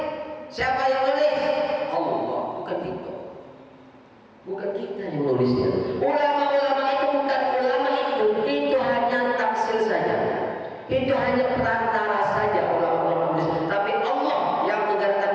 Siapa yang nulis? Allah, bukan kita yang nulisnya. Ulama-ulama itu bukan ulama itu hanya tafsir saja. Itu hanya perantara saja ulama-ulama nulis. Tapi Allah yang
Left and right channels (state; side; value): identical; both; correlation 1.00